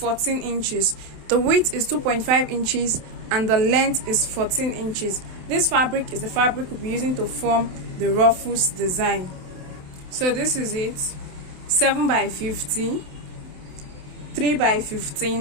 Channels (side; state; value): left; late; 27 ms